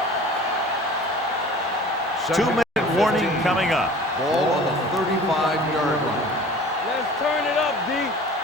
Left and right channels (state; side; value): normal; both; correlation 0.44